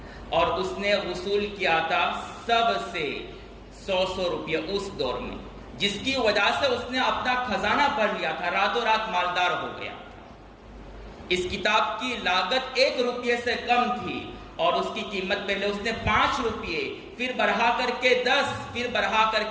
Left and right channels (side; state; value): both; identical; correlation 1.00